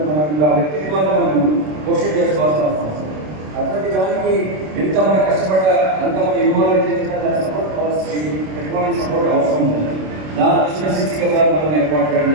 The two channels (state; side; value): late; left; 27 ms